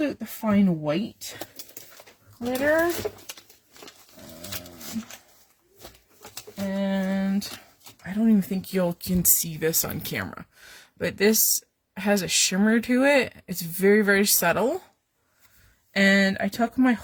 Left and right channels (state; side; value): identical; both; correlation 1.00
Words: out the fine white glitter. And I don't even think you can see this on camera. But this has a shimmer to it. It's very, very subtle. And I took my